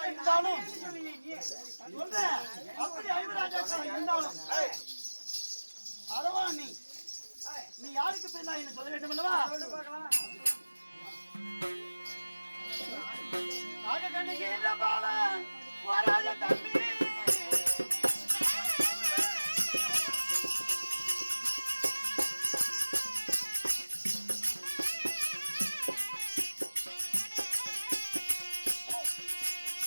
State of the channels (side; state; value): both; inverted; correlation -1.00